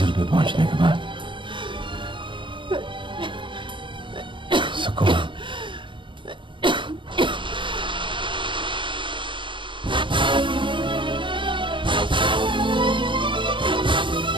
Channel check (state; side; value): late; left; 0.24 ms